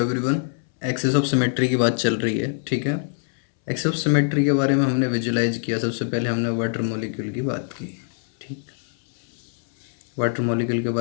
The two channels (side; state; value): right; silent; 63 dB below the other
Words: Axis of symmetry की बात चल रही है, ठीक है। एक्सेस ऑफ सिमेट्री के बारे में हमने विजुलाइज किया। सबसे पहले हमने वाटर मॉलिक्यूल की बात की, ठीक। वाटर मॉलिक्यूल के